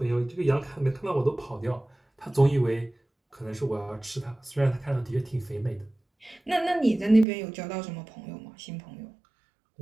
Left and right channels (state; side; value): drops out; left; at 7.2 s